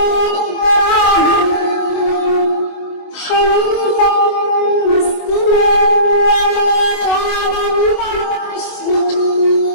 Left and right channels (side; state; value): right; late; 24 ms